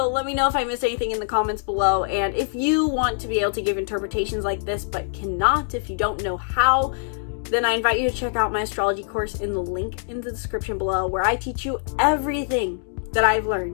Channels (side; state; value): right; silent; digital silence